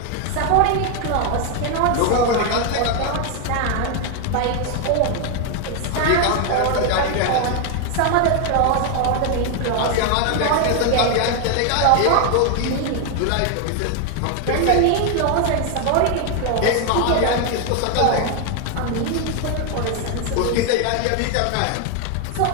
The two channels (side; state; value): both; different; correlation 0.01